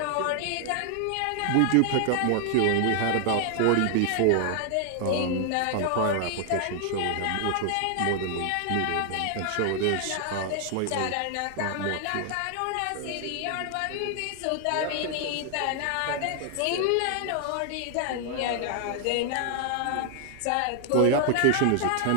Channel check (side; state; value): both; different; correlation 0.00